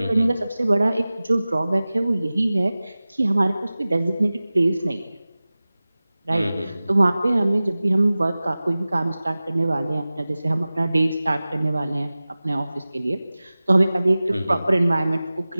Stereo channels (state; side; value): inverted; both; correlation -0.97